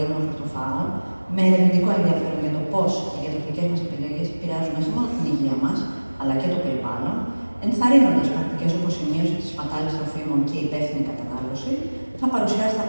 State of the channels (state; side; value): inverted; both; correlation -1.00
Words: Χορτοφάγων, με ερευνητικό ενδιαφέρον για το πώς οι διατροφικές μας επιλογές επηρεάζουν όχι μόνο την υγεία μας, αλλά και το περιβάλλον, ενθαρρύνοντας πρακτικές όπως η μείωση της σπατάλης τροφίμων και η υπεύθυνη κατανάλωση, θα παρουσιάσει τα